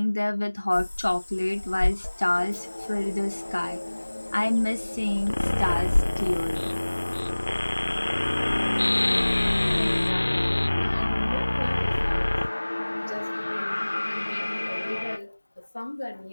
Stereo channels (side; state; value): both; inverted; correlation -1.00